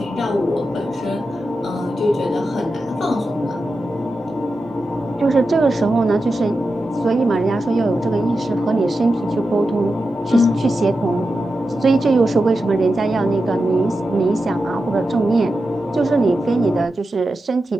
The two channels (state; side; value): normal; both; correlation 0.90